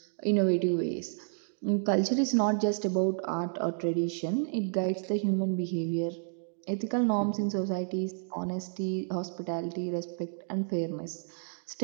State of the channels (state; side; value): silent; left; digital silence